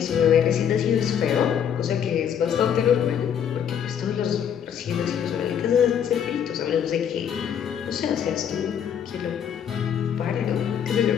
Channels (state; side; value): quieter; right; 8.6 dB